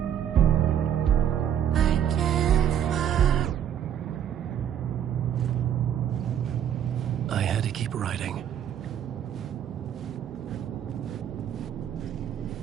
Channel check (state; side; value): quieter; left; 9.6 dB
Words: I had to keep writing.